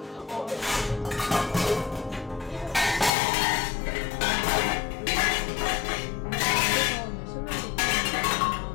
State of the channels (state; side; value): drops out; right; at 3.1 s